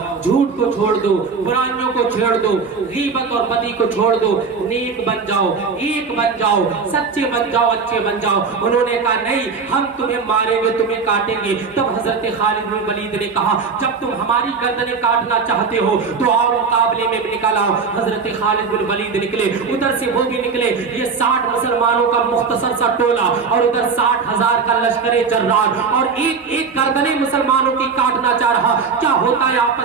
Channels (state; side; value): quieter; left; 5.2 dB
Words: جھوٹ کو چھوڑ دو، برائیوں کو چھوڑ دو، غیبت اور بدی کو چھوڑ دو، نیک بن جاؤ، ایک بن جاؤ، سچے بن جاؤ، اچھے بن جاؤ۔ انہوں نے کہا نہیں ہم تمہیں ماریں گے، تمہیں کاٹیں گے۔ تب حضرت خالد بن ولید نے کہا جب تم ہماری گردنیں کاٹنا چاہتے ہو تو آؤ مقابلے میں نکل آؤ۔ حضرت خالد بن ولید نکلے، ادھر سے وہ بھی نکلے، یہ 60 مسلمانوں کا مختصر سا ٹولہ اور ادھر 60,000 کا لشکر جرار، اور ایک ایک گردنیں مسلمانوں کی کاٹنا چاہ رہا۔ کیا ہوتا ہے